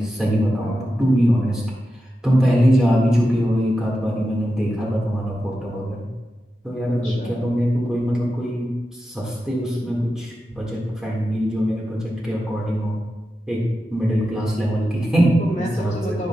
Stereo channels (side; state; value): both; normal; correlation 0.90